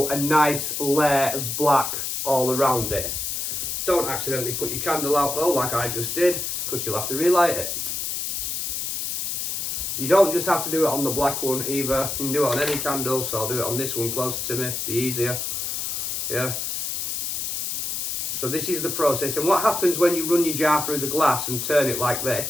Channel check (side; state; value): left; noise; hiss, 3 dB below the sound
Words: a nice layer of black all around it. Don't accidentally put your candle out though, like I just did, because you'll have to relight it. You don't just have to do it on the black one either. You can do it on any candle, so I'll do it on this one closer to me, be easier. Yeah. So this is the process, and what happens when you run your jar through the glass and turn it like